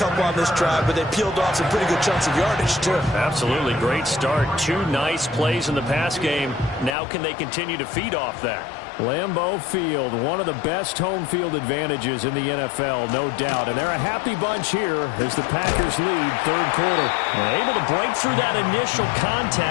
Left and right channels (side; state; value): right; drops out; at 7.0 s